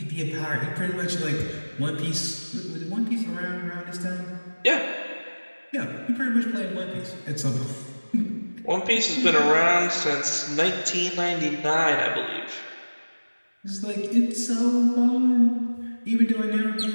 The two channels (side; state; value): both; inverted; correlation -1.00